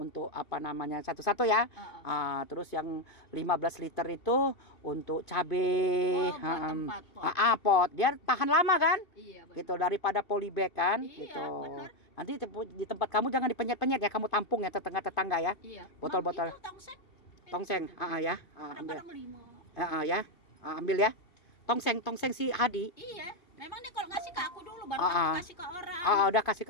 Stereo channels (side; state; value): right; late; 2.7 ms